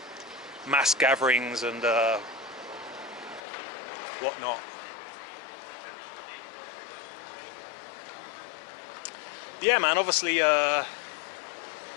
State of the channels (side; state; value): right; drops out; at 3.4 s